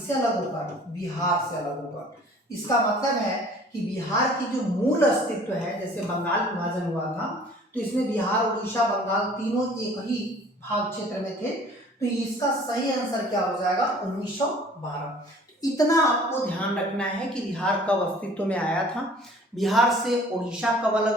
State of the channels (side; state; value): both; normal; correlation 0.51